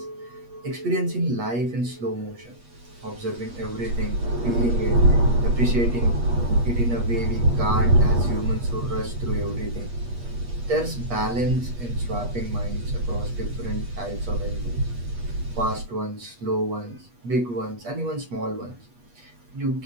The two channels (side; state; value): left; late; 8.4 ms